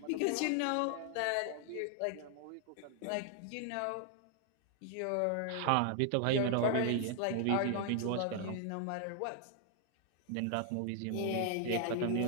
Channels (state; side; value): different; both; correlation 0.00